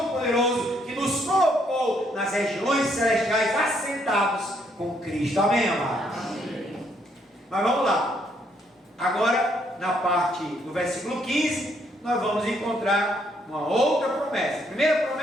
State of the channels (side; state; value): both; normal; correlation 0.71